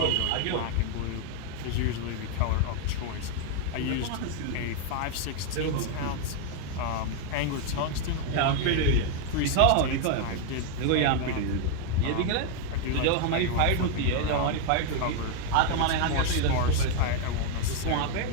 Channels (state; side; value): different; both; correlation 0.01